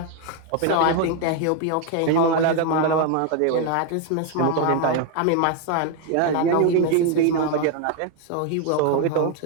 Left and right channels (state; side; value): different; both; correlation 0.01